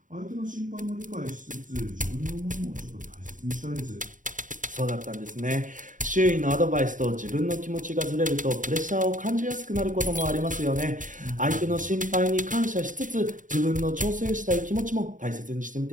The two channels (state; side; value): late; left; 0.38 ms